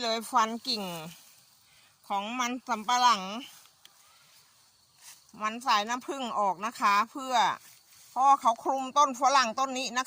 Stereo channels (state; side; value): identical; both; correlation 1.00